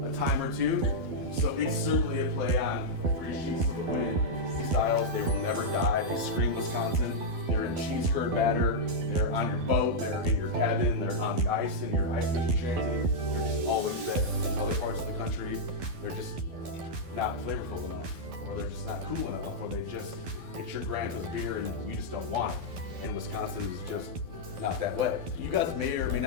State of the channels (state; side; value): late; left; 12 ms